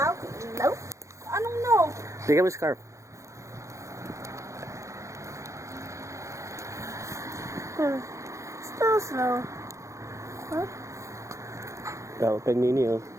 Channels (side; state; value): left; late; 0.15 ms